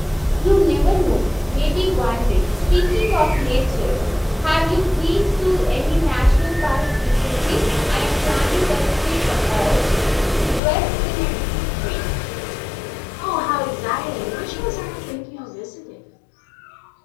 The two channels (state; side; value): drops out; right; at 10.6 s